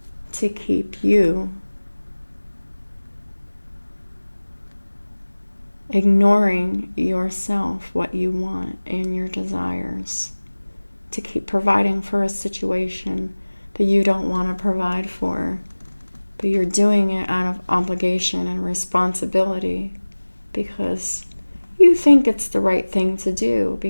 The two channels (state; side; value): inverted; both; correlation -1.00